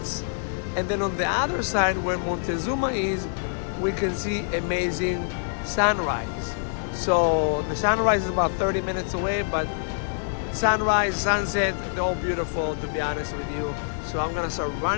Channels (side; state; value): right; silent; 59 dB below the other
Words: And then on the other side where Montezuma is, we can see amazing sunrise. So the sunrise is about 30 minutes away, but sunrise, sunset, they're all beautiful, to be honest with you. So I'm gonna start